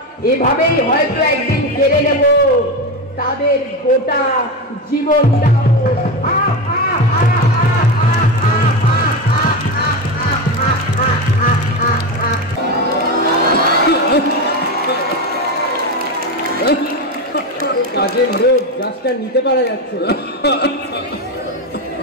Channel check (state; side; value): normal; both; correlation 0.17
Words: এভাবেই হয়তো একদিন কেড়ে নেব তাদের গোটা জীবনটাও। কাজের লোক গাছটা নিতে পারা যাচ্ছে না।